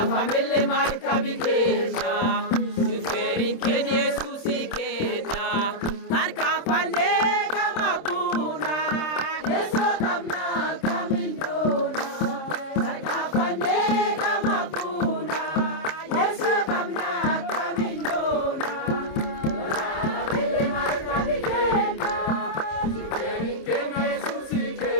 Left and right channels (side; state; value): right; late; 26 ms